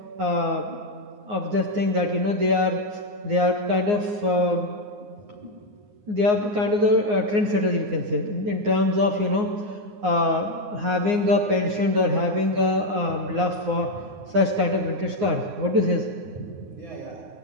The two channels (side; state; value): left; late; 9.6 ms